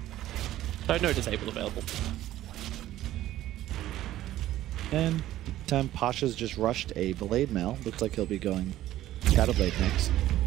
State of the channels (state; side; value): quieter; left; 14.0 dB